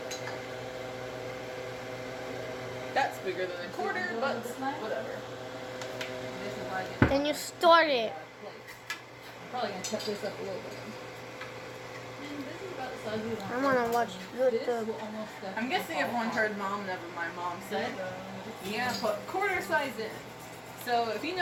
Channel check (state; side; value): identical; both; correlation 1.00